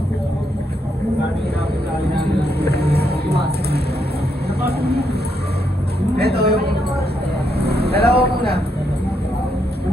Ito yung... Dalawa muna.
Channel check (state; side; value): normal; both; correlation 0.78